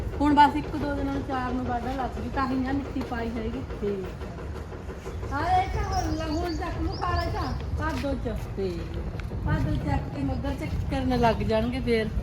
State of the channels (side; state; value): both; identical; correlation 1.00